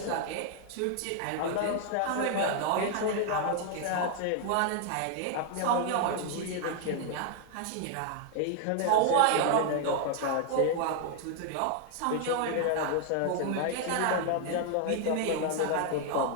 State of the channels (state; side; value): different; both; correlation 0.00